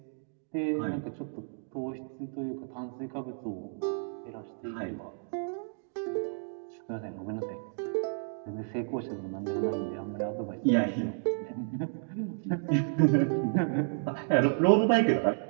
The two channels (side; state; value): left; silent; digital silence